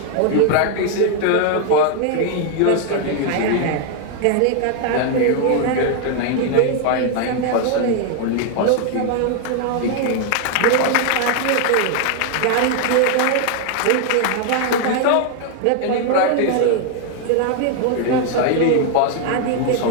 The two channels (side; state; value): both; different; correlation 0.00